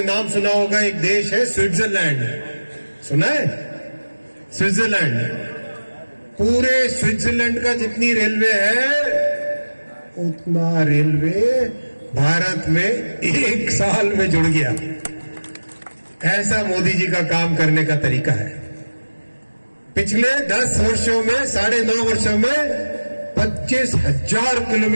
नाम सुना होगा, एक देश है स्विट्जरलैंड, सुना है? स्विट्जरलैंड, पूरे स्विट्जरलैंड का जितनी रेलवे है उतना रेलवे भारत में 1 साल में जुड़ गया। ऐसा मोदी जी का काम करने का तरीका है। पिछले 10 वर्षों में, 9.5 वर्षों में 25,000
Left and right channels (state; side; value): inverted; both; correlation -1.00